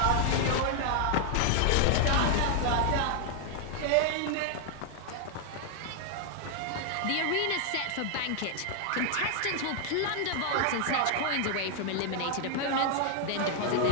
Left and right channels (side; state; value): both; different; correlation 0.00